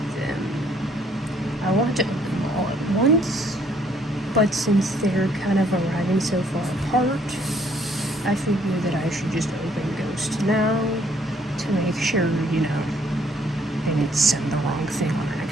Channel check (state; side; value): normal; both; correlation 0.65